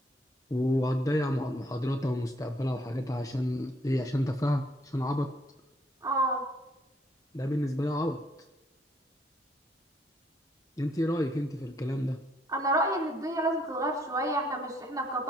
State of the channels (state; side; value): normal; both; correlation 0.68